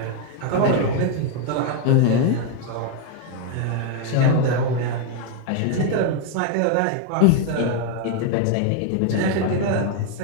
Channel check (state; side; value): different; both; correlation 0.01